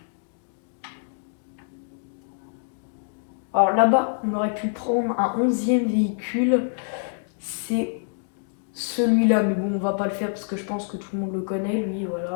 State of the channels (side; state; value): right; silent; digital silence